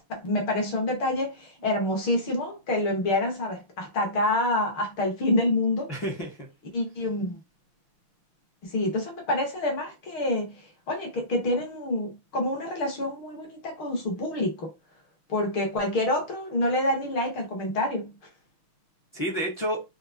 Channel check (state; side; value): late; right; 6.4 ms